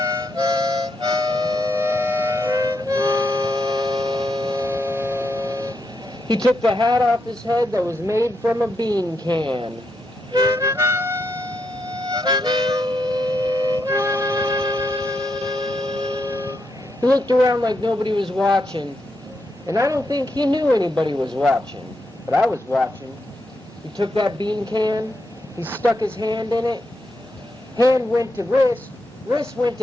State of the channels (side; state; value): both; normal; correlation 0.82